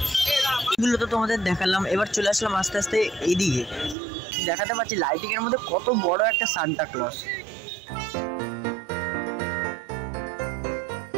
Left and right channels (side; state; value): left; drops out; at 4.0 s